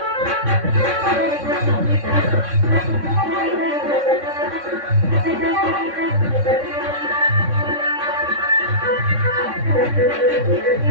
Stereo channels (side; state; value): left; late; 3.6 ms